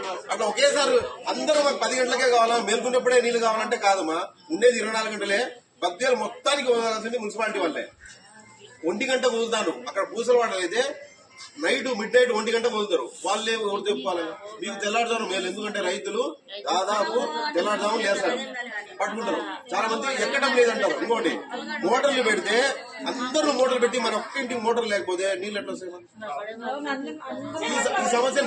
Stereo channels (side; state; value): both; identical; correlation 1.00